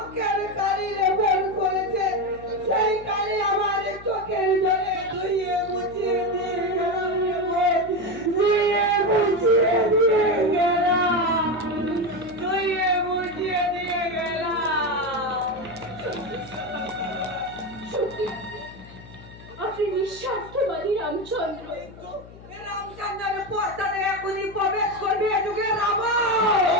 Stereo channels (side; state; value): left; noise; hum, 19 dB below the sound